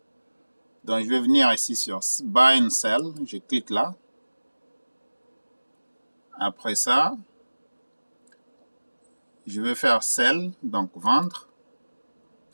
Donc, je vais venir ici sur Buy and Sell. Je clique là. Après ça, je vais faire Sell, donc vendre.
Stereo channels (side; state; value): both; inverted; correlation -1.00